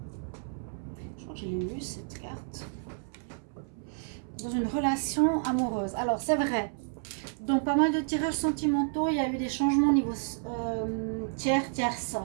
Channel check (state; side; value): silent; left; 57 dB below the other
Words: Je crois que j'ai lu cette carte. Dans une relation amoureuse. Alors, c'est vrai. Donc, pas mal de tirages sentimentaux. Il y a eu des changements au niveau tierce